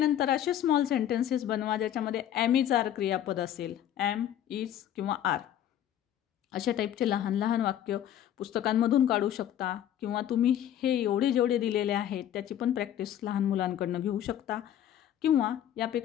असे स्मॉल सेंटेन्सेस बनवा ज्याच्यामध्ये एम इज आर क्रियापद असेल, एम, इज किंवा आर. अशा टाईपचे लहान लहान वाक्य पुस्तकांमधून काढू शकता किंवा तुम्ही हे एवढे जेवढे दिलेले आहेत त्याची पण प्रॅक्टिस लहान मुलांकडनं घेऊ शकता. किंवा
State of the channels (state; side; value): quieter; right; 10.9 dB